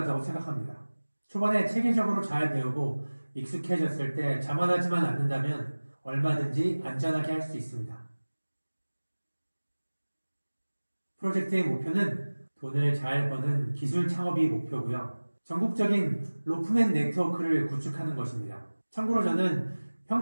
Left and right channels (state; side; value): inverted; both; correlation -1.00